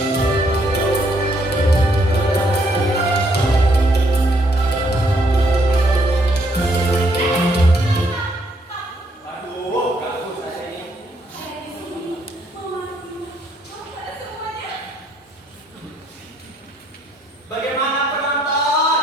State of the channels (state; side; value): normal; both; correlation 0.70